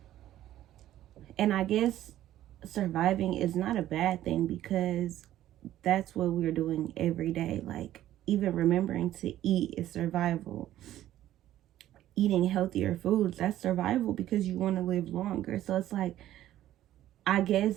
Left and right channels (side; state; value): left; quieter; 13.1 dB